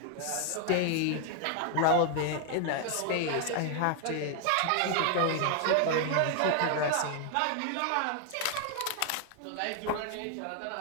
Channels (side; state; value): both; different; correlation 0.00